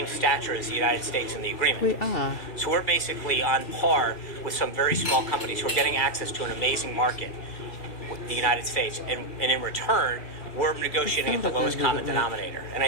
stature as the United States in the agreement. We are. So we're basically on par with some very small companies who are getting access to an amazing market, the United States, and in return, we're negotiating at the lowest common denominator. And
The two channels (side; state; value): right; late; 2.3 ms